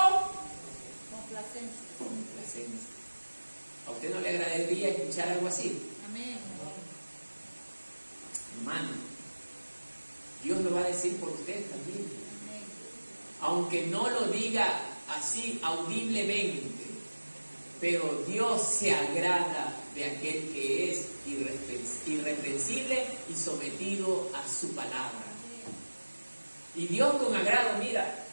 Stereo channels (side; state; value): both; inverted; correlation -1.00